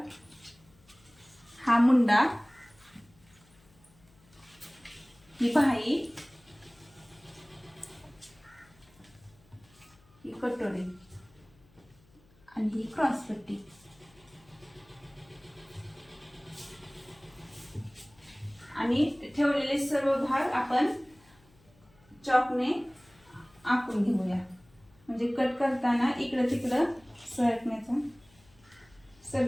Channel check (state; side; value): noise; left; hum, 29 dB below the sound